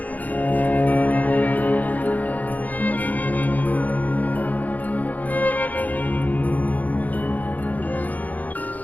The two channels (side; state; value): right; late; 0.079 ms